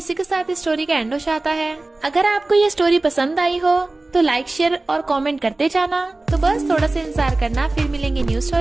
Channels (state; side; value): quieter; left; 3.0 dB